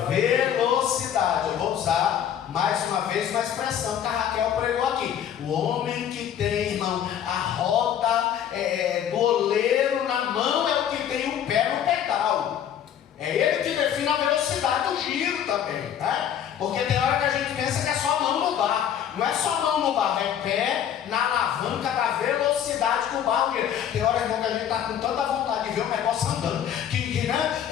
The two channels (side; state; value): right; quieter; 9.6 dB